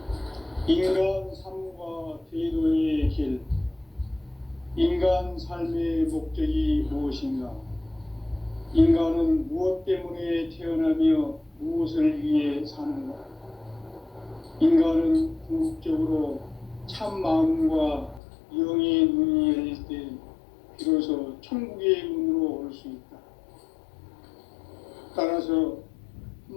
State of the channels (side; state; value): right; drops out; at 18.2 s